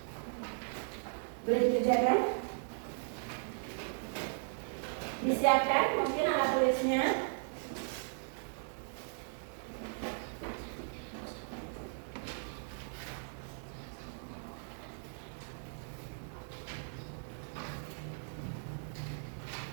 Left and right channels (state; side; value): silent; left; digital silence